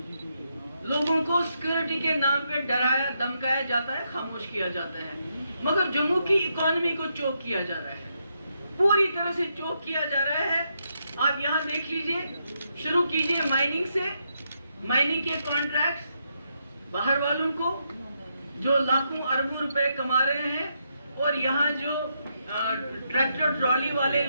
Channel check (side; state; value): both; inverted; correlation -0.80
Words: लोगों को सिक्योरिटी के नाम पे डराया धमकाया जाता है, खामोश किया जाता है, मगर जम्मू की इकोनॉमी को चोक किया जा रहा है, पूरी तरह से चोक किया जा रहा है। आप यहाँ देख लीजिए, शुरू कीजिए माइनिंग से, माइनिंग के कॉन्ट्रैक्ट्स बाहर वालों को जो लाखों अरबों रुपए कमा रहे हैं, और यहाँ जो ट्रैक्टर ट्रॉली वाले